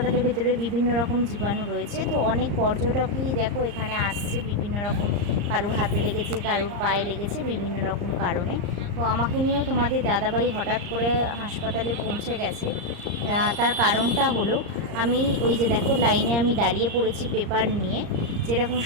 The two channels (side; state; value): left; late; 34 ms